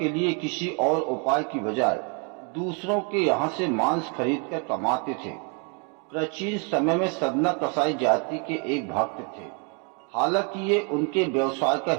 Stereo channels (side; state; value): left; quieter; 36.5 dB